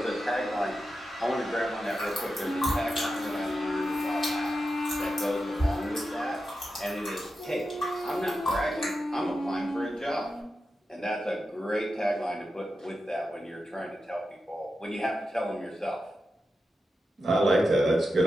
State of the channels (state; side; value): normal; both; correlation 0.90